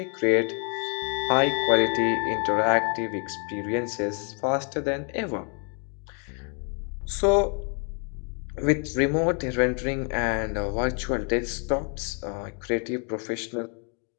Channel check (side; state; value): right; quieter; 39.7 dB